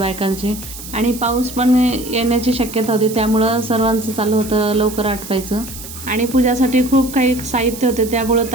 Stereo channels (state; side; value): noise; right; hiss, 13 dB below the sound